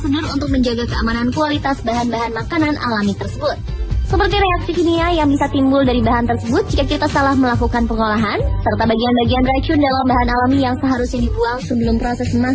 untuk menjaga keamanan kualitas bahan-bahan makanan alami tersebut. Seperti reaksi kimia yang bisa timbul dari bahan tersebut jika kita salah melakukan pengolahan, serta bagian-bagian racun dalam bahan alami yang seharusnya dibuang sebelum proses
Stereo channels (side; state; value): both; identical; correlation 1.00